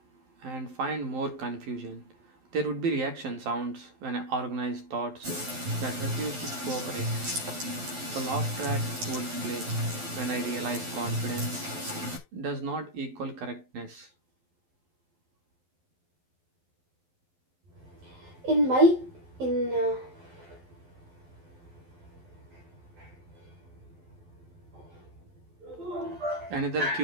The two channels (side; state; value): left; late; 12 ms